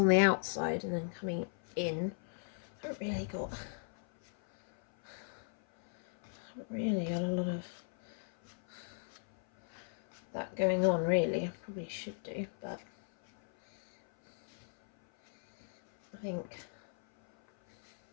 the outside and then coming in. I haven't really got a lot of that going on, really. I probably should do, but I think,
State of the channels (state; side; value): silent; right; 53 dB below the other